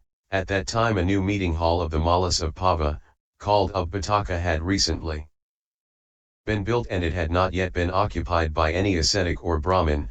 at that time a new meeting hall of the Malas of Pava, called Upataka, had recently been built, and it had not yet been occupied by any ascetic or Brahmin,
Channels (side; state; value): both; identical; correlation 1.00